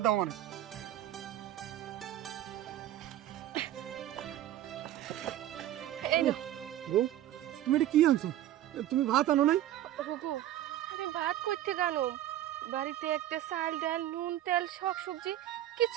দাও মানে। এই নাও। বউ তুমি এটা কি আনছো? তুমি ভাত আনো নাই? ওগো আমি ভাত করতে জানো, বাড়িতে একটা চাল ডাল নুন তেল শাক সবজি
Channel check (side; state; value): left; quieter; 13.0 dB